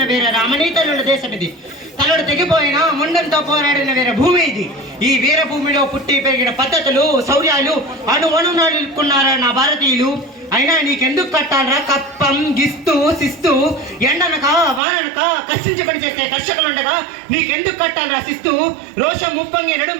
వీర రామనీతనుల దేశం ఇది. తలడు తెగిపోయిన ముండంతో పోరాడిన వీర భూమి ఇది. ఈ వీరభూమిలో పుట్టి పెరిగిన పద్ధతులు, శౌర్యాలు అణుకున్నారా నా భారతీయులు. అయినా నీకెందుకు కట్టాలరా కప్పం, గిస్తూ శిస్తూ, ఎండనక వాననక కష్టించి పని చేసే కర్షకులుండగా నీకెందుకు కట్టాలరా శిస్తూ? రోషం ముప్పంగి నడుం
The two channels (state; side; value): drops out; left; at 14.8 s